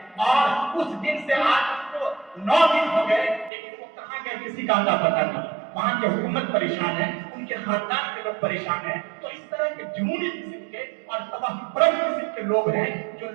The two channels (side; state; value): left; drops out; at 3.5 s